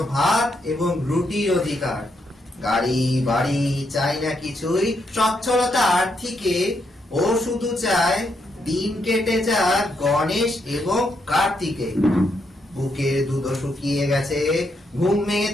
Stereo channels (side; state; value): both; normal; correlation 0.79